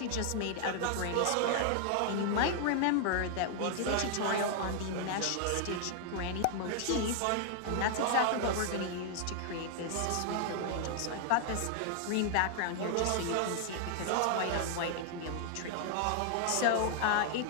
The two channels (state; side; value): different; both; correlation 0.00